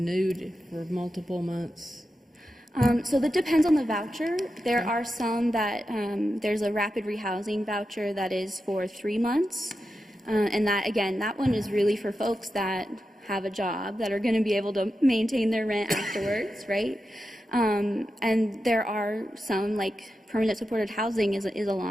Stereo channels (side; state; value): both; normal; correlation 0.90